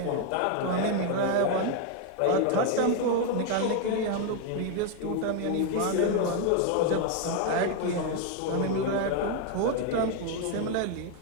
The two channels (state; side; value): different; both; correlation 0.01